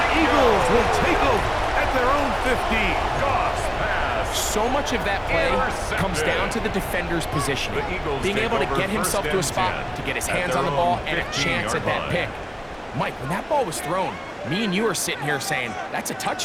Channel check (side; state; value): both; identical; correlation 1.00